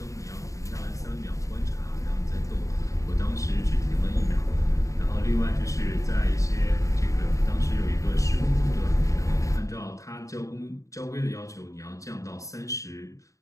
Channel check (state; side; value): late; right; 0.16 ms